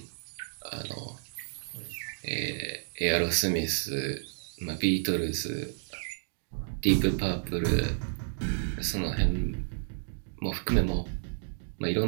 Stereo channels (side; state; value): left; silent; digital silence